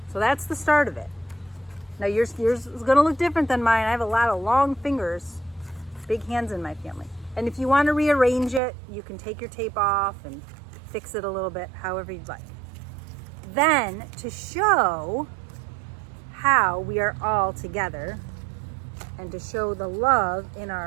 So that's the start of it. Now yours is going to look different than mine. I have a lot of long fingers, big hands in my family. And if you want to rearrange it, you can take your tape off and fix it a little bit, however you'd like. Then, to show how we are all together and to show the love in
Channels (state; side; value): drops out; left; at 8.6 s